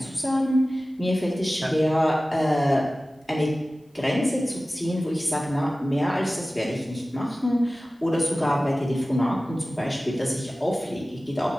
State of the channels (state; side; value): normal; both; correlation 0.97